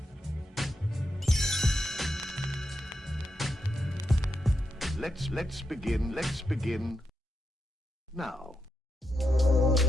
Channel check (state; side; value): normal; both; correlation 0.85